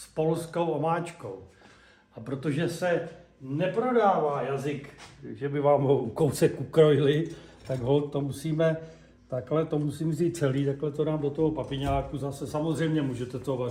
polskou omáčkou. A protože se neprodává jazyk, že by vám ho kousek ukrojili, tak to musím vzít celý, takhle to dám do toho papiňáku. Zase samozřejmě můžete to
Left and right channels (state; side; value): identical; both; correlation 1.00